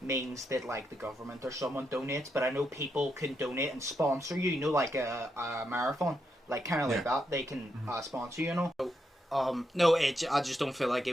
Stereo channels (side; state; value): both; normal; correlation 0.82